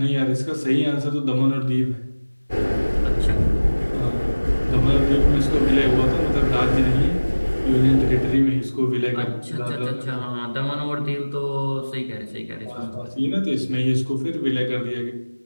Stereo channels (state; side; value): inverted; both; correlation -1.00